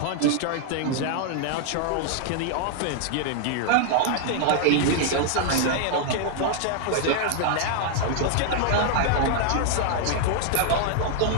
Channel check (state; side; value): different; both; correlation 0.00